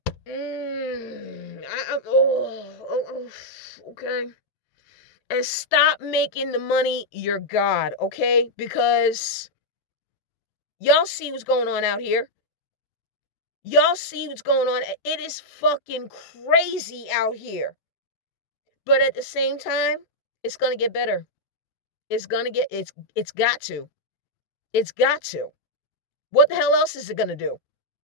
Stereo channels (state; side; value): late; right; 14 ms